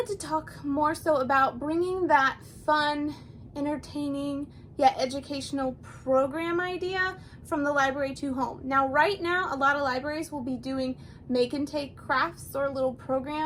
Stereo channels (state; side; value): identical; both; correlation 1.00